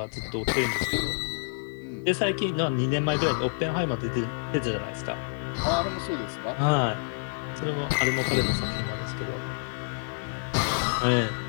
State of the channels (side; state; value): right; silent; digital silence